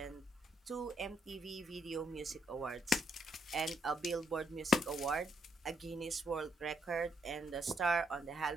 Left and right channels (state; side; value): normal; both; correlation 0.74